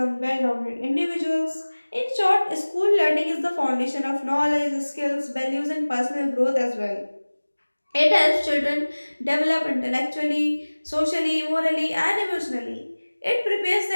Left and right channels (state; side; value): inverted; both; correlation -1.00